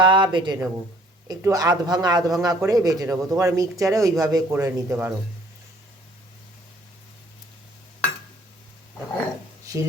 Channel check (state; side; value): normal; both; correlation 0.59